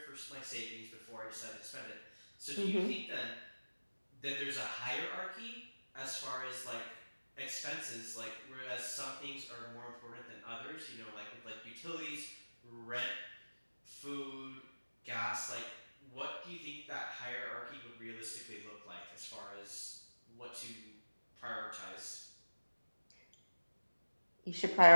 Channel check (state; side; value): inverted; both; correlation -1.00